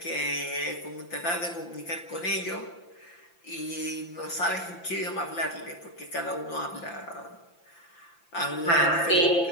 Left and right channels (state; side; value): late; right; 5.9 ms